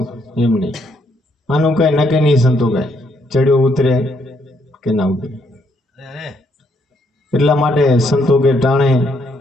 એમ નહીં. આનું કઈ નક્કી નહીં સંતો કઈ ચડ્યો ઉતરે કે ના ઉતરે. એટલા માટે સંતો કે ટાણે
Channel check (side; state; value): both; normal; correlation 0.72